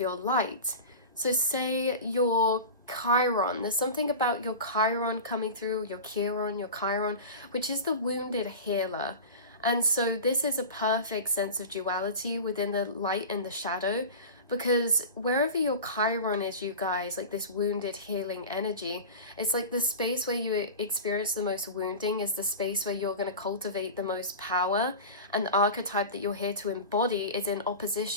light. So say your Chiron, there's something about your Chiron coming through, your Chiron, which is the wounded healer. And so this is a perfect sense of duality within the light and the shadow, because wherever your Chiron is, you guys, like this wounded healing energy, it's like the space where you experience the most wounding is the space where you're going to cultivate the most power, and the archetype that you're here to embody is in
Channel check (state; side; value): inverted; both; correlation -0.30